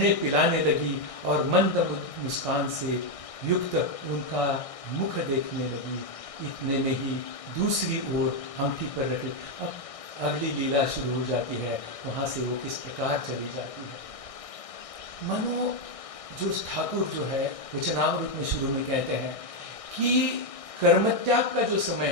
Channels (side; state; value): right; late; 1.6 ms